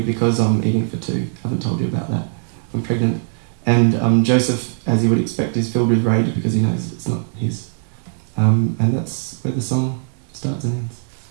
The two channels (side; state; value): left; silent; digital silence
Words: I'm eating for 2. I haven't told you about that. I'm pregnant. And Joseph, as you would expect, is filled with rage because he knows it's not his. And that's where the song starts and ends.